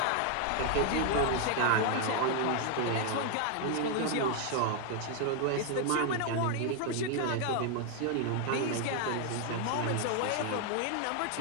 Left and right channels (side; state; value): both; different; correlation 0.00